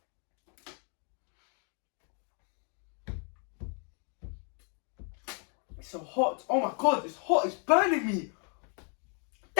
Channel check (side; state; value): right; quieter; 40.0 dB